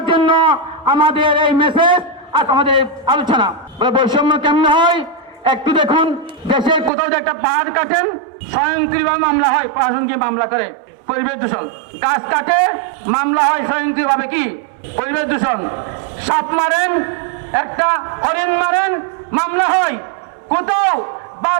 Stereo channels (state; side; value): drops out; left; at 6.9 s